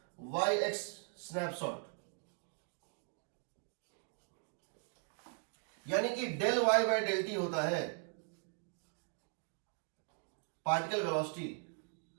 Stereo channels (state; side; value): silent; left; 51 dB below the other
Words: y x snapshot, यानी कि del Y by del t होता है particle velocity